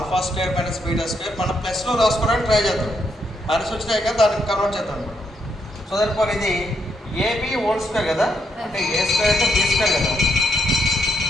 square minus beta square మనం ప్లస్లో రాసుకోవడానికి try చేద్దాం. మైనస్ వచ్చినాయి కదా, దానికి కన్వర్ట్ చేద్దాం అనమాట. సో దానిపోయి ఇది ఏబి హోల్ స్క్వేర్ కదా, అంటే ఏ స్క్వేర్ అంటే బి స్క్వేర్ కదా.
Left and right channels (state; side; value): normal; both; correlation 0.78